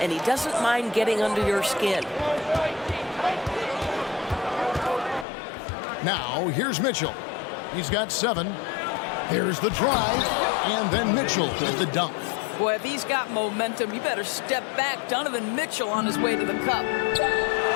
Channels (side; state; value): right; drops out; at 5.2 s